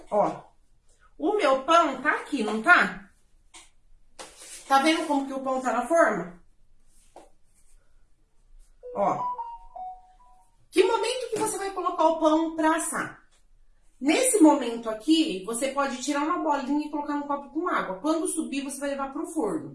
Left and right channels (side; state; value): both; identical; correlation 1.00